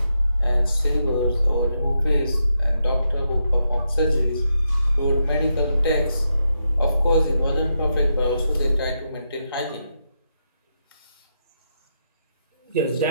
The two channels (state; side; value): inverted; both; correlation -0.83